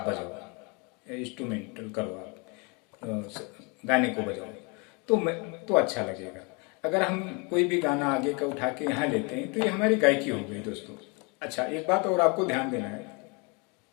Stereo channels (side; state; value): right; quieter; 31.2 dB